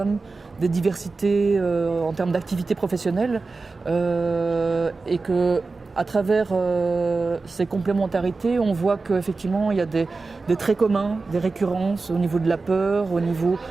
des diversités en termes d'activité professionnelle, et que à travers ces complémentarités, on voit qu'effectivement il y a des traits communs, des récurrences au niveau de la peur, au niveau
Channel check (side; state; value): left; quieter; 3.9 dB